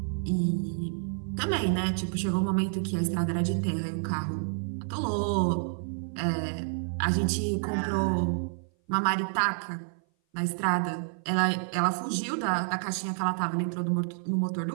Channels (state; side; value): silent; left; 56 dB below the other